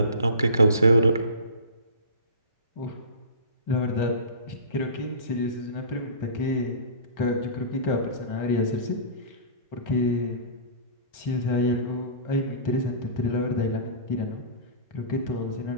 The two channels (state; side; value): inverted; both; correlation -0.37